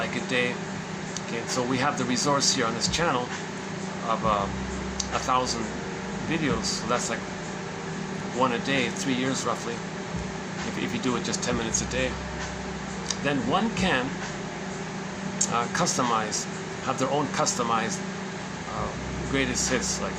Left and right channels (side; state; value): both; identical; correlation 1.00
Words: a day. Okay, so we have the resource here on this channel of 1,000 videos. So that's like one a day, 3 years roughly. If you do it just 10 minutes a day. Then one can customize, have their own customized greatest hits, like